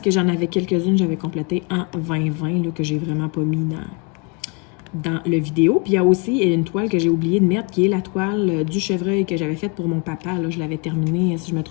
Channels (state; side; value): quieter; right; 32.1 dB